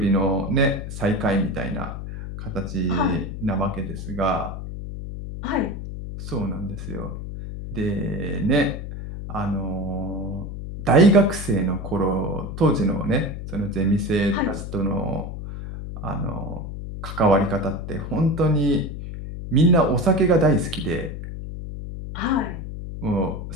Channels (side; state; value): left; noise; hum, 8 dB below the sound